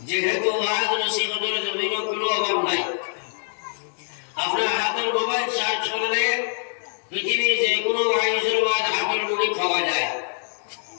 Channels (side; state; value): right; silent; 56 dB below the other